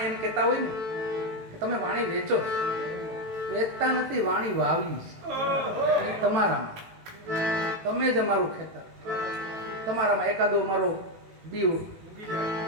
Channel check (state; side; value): late; left; 18 ms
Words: એમ કહેતા હોય ને કે તમે વાણી વેચો, વેચતા નથી, વાણી વાવી છે તમારામાં. તમે જ અમારું ખેતર, તમારામાં એકાદો અમારો બી